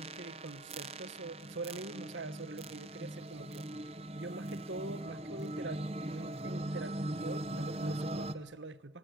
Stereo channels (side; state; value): both; normal; correlation 0.51